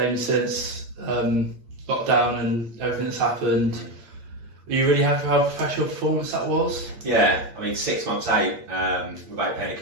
since lockdown and everything that's happened. Are you really happy how professional performance that was? Yeah, I mean 6 months out without playing a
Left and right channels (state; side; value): late; left; 8.6 ms